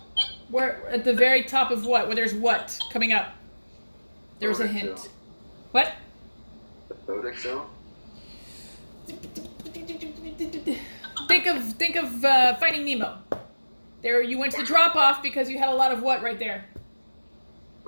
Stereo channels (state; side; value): inverted; both; correlation -1.00